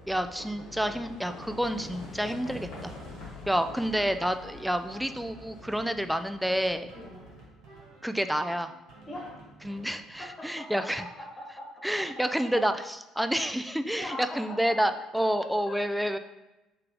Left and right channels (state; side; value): normal; both; correlation 0.94